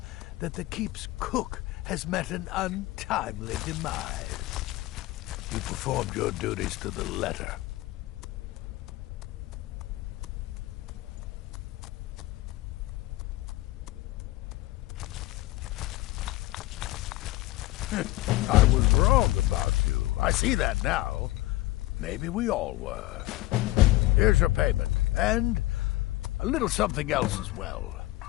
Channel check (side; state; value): right; quieter; 17.7 dB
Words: that the keep's cook has met an untimely demise. You performed your duties to the letter. I was wrong about you. I see that now. Maybe we all were. Here's your payment, and a little something else as well,